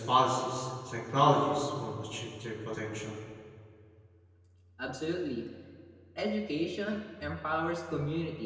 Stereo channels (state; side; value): identical; both; correlation 1.00